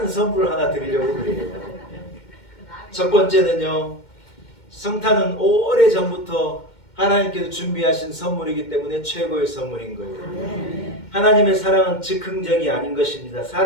선물을 하나 드리려고 그래요. 첫 번째는요, 성탄은 오래전부터 하나님께서 준비하신 선물이기 때문에 최고의 선물인 거예요. 하나님의 사랑은 즉흥적이 아닌 것입니다.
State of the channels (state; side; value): late; right; 2.1 ms